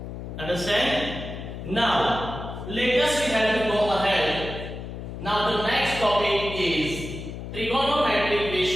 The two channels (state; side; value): noise; left; hum, 9 dB below the sound